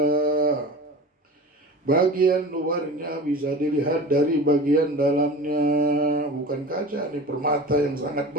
Bagian luarnya bisa dilihat dari bagian dalamnya. Bukan kaca, ini permata yang sangat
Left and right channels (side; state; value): both; normal; correlation 0.35